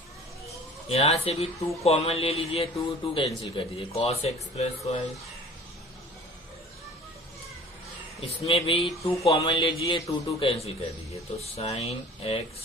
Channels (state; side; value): normal; both; correlation 0.46